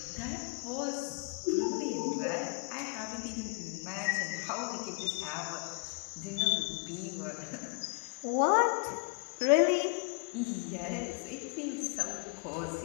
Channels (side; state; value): right; quieter; 35.3 dB